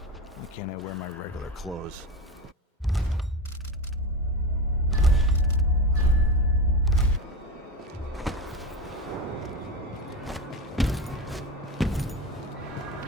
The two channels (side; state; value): both; normal; correlation 0.22